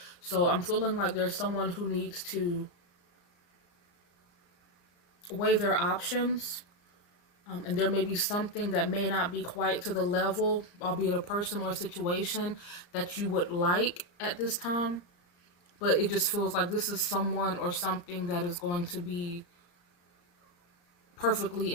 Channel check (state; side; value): late; right; 34 ms